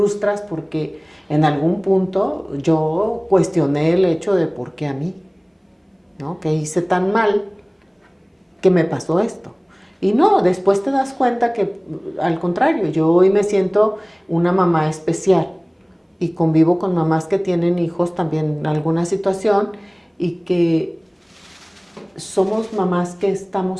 porque en algún punto yo cuestioné el hecho de por qué a mí, ¿no? Que hice tan mal que me pasó esto. Y no, después te das cuenta que al contrario, yo hoy me siento una mamá especial y convivo con mamás que tienen hijos también en alguna situación y que somos mamás que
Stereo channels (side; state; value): both; identical; correlation 1.00